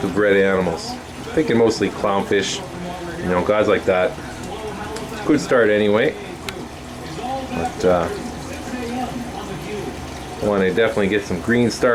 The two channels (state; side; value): identical; both; correlation 1.00